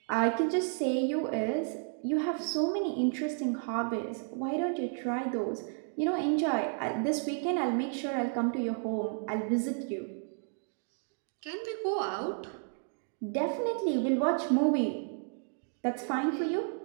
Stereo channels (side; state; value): left; silent; 56 dB below the other